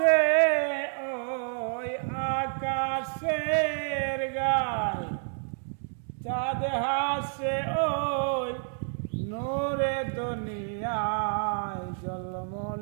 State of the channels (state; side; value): silent; left; 59 dB below the other